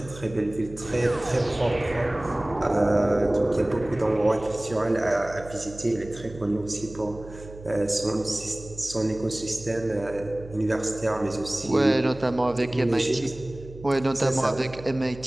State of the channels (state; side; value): noise; right; hum, 16 dB below the sound